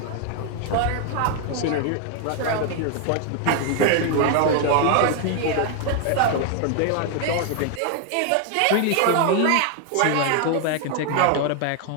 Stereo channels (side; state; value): both; different; correlation 0.00